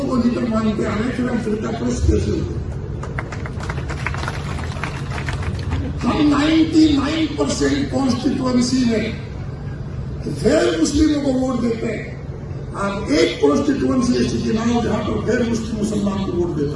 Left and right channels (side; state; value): both; identical; correlation 1.00